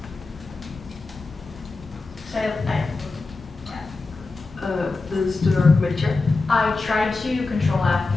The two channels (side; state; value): right; quieter; 3.7 dB